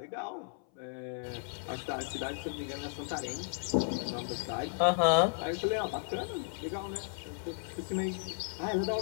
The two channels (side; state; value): right; silent; 55 dB below the other